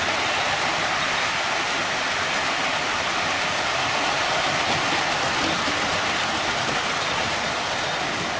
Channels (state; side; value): identical; both; correlation 1.00